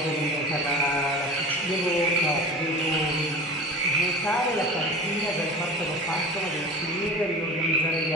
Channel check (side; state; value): both; normal; correlation 0.35